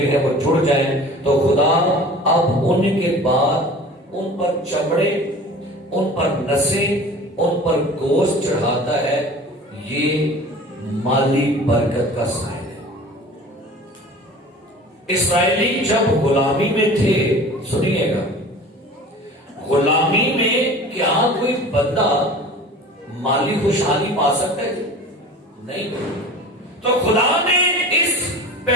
ہیں وہ جڑ جائیں، تو خدا اب ان کے بعد ان پر چمڑے، ان پر نسیں، ان پر گوشت چڑھاتا ہے۔ یہ مالی برکت کا سائن ہے۔ اسرائیلی جب غلامی میں تھے، سنیے گا، غلامی میں کیا کوئی بندہ مالی خوشحالی پا سکتا ہے؟ نہیں۔ تو خدا نے اس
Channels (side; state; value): both; normal; correlation 0.41